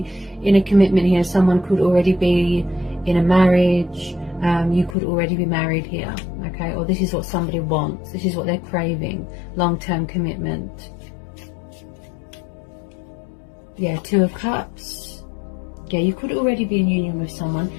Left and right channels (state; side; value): drops out; right; at 5.0 s